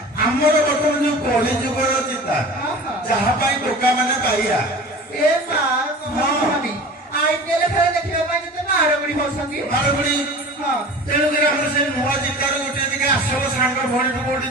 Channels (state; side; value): normal; both; correlation 0.38